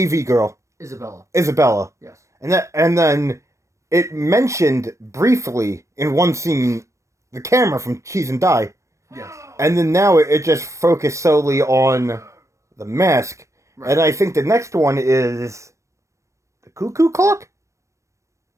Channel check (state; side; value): late; left; 0.15 ms